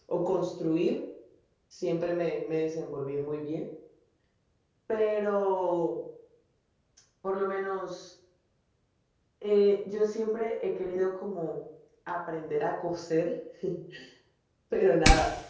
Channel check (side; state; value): both; identical; correlation 1.00